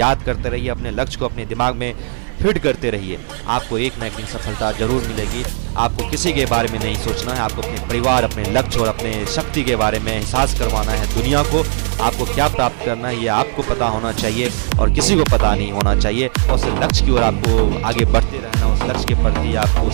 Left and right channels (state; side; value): silent; left; digital silence